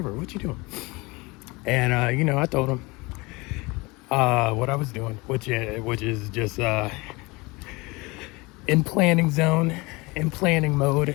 What you doing? And you know, I told him what I was doing, which is just in planning zone, in planning mode,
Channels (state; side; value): quieter; right; 24.5 dB